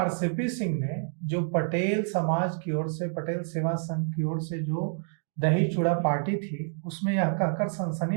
सिंह ने जो पटेल समाज की ओर से, पटेल सेवा संघ की ओर से जो दही चूड़ा पार्टी थी, उसमें यह कहकर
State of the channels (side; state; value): left; silent; digital silence